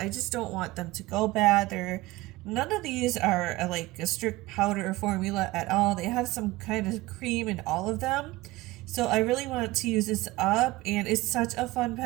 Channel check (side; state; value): left; quieter; 19.6 dB